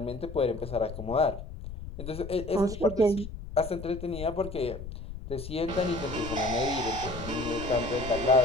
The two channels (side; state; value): left; noise; rumble, 10 dB below the sound